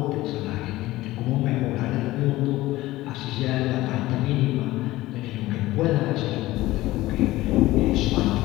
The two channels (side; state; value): right; quieter; 17.5 dB